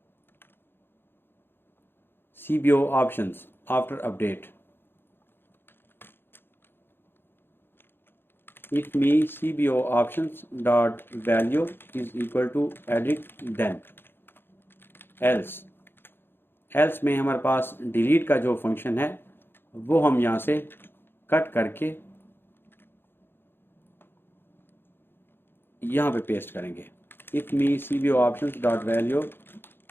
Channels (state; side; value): late; right; 0.10 ms